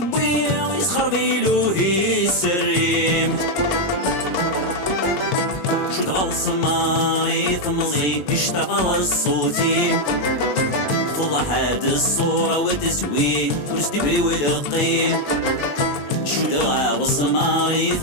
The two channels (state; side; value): late; right; 21 ms